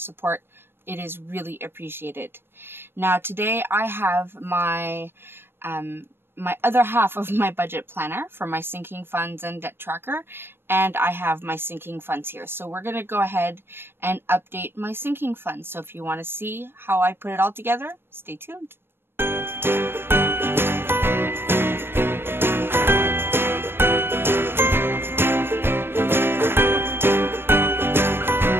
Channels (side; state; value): left; late; 0.11 ms